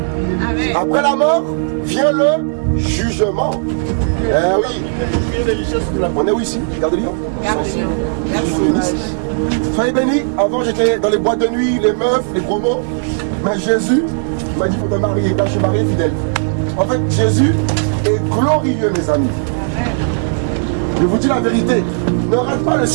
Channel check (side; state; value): left; silent; digital silence